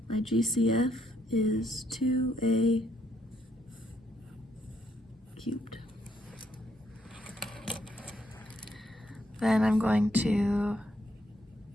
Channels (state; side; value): normal; both; correlation 0.74